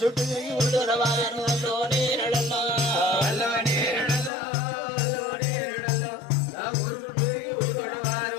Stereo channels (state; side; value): drops out; right; at 4.3 s